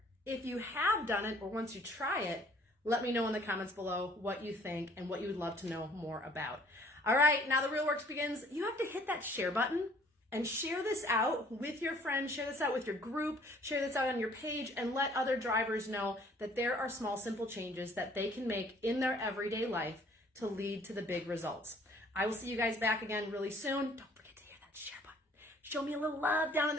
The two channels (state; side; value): normal; both; correlation 0.57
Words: if you have done it or once you try it, let me know in the comments below what you think and what you would love to know more about. All right, now the real work begins. You have to hit that share button and share this out with your friends, share this out with your group, share this out on your page, and let other drivers know that there are small, simple changes that they can make in their everyday life to lead to the big results. I will see you guys back again really soon. Don't forget to hit that share button. Show me a little love down in